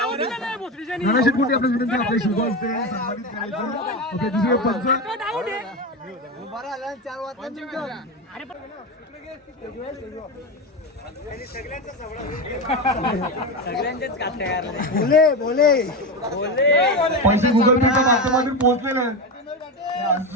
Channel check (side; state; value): both; normal; correlation 0.17